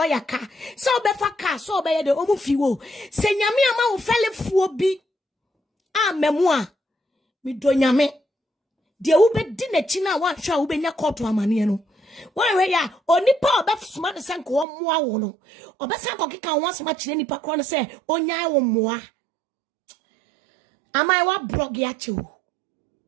ka. So be fa car. So be de omo fiwo. Se nyame ama wo fele fuo bi. Memoa. Mi do nyame. De wo be di na chi na wa hwa wo be nya court amane no. Why ya onipa obefsuma de senko wo moa wo no obesa ko keka wo asema kire nipa kro no se onyan wo moa amai wa blog ya che wo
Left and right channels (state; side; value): drops out; left; at 14.7 s